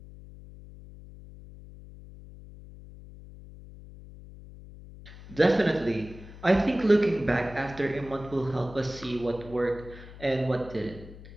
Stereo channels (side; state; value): left; noise; hum, 17 dB below the sound